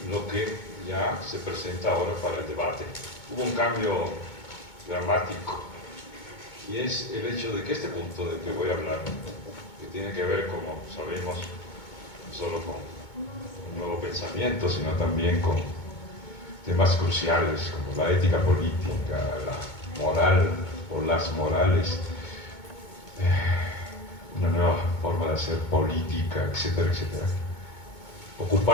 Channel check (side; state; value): right; late; 2.2 ms